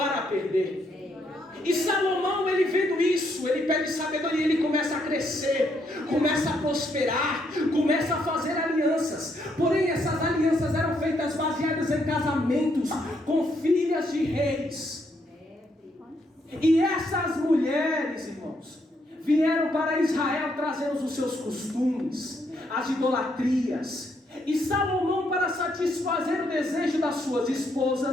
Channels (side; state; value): both; normal; correlation 0.75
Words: perder. E Salomão, ele vendo isso, ele pede sabedoria, ele começa a crescer, começa a prosperar, começa a fazer alianças. Porém, essas alianças eram feitas baseadas em casamentos com filhas de reis. E essas mulheres, irmãos, vieram para Israel trazendo os seus costumes, as idolatrias. E Salomão, para satisfazer o desejo das suas